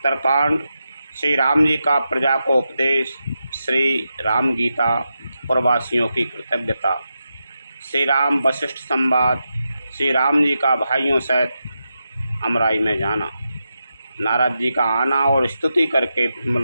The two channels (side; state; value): both; inverted; correlation -0.88